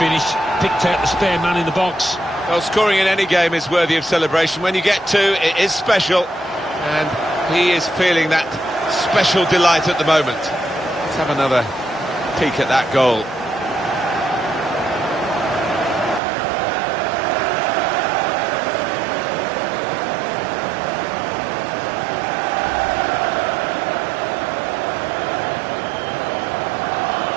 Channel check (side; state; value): left; drops out; at 16.2 s